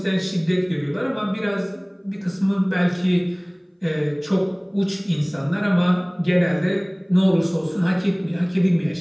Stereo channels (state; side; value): identical; both; correlation 1.00